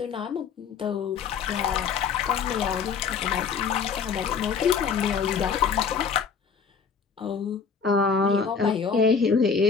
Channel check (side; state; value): right; quieter; 6.1 dB